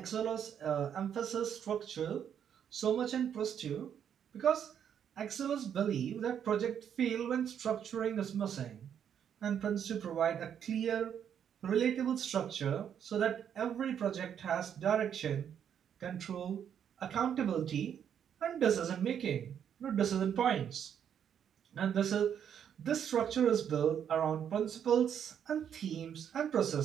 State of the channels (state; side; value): quieter; left; 8.7 dB